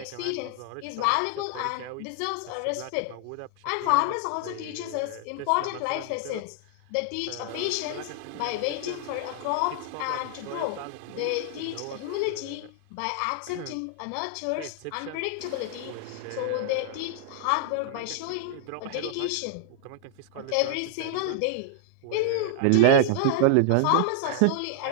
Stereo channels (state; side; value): different; both; correlation 0.00